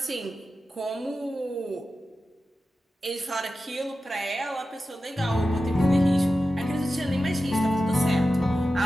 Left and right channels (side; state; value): both; normal; correlation 0.93